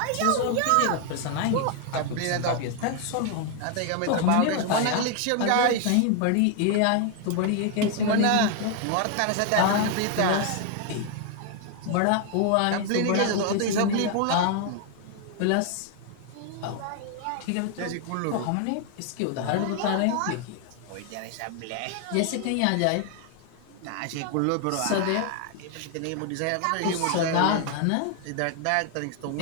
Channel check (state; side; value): different; both; correlation 0.00